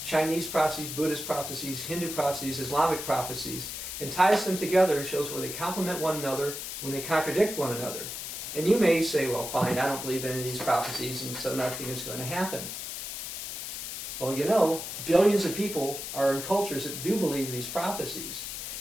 Chinese prophecies, Buddhist prophecies, Hindu prophecies, Islamic prophecies, and ties them together and shows where they complement one another, when they contradict one another. And you may say, well, fine, I don't believe in any of these prophecies, and so nothing is going to happen. Well, you know, billions of people are in cultures that do believe these prophecies.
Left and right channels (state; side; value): noise; left; hiss, 6 dB below the sound